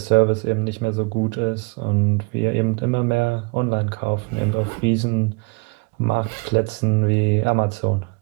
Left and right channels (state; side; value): quieter; left; 29.1 dB